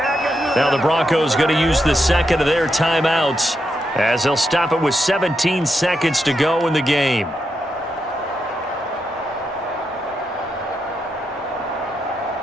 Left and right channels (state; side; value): normal; both; correlation 0.84